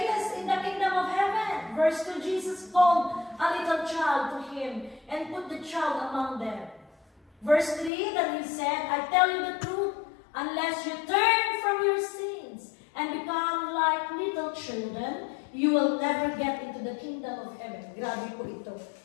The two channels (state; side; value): drops out; right; at 7.9 s